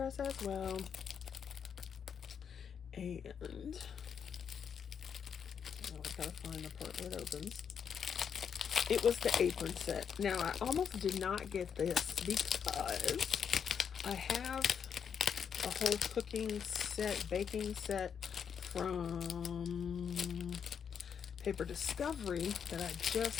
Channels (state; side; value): quieter; right; 7.3 dB